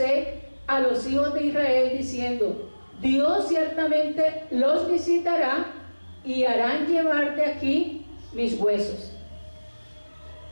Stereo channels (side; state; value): both; inverted; correlation -1.00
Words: a los hijos de Israel diciendo: Dios ciertamente los visitará y harán llevar de aquí mis huesos.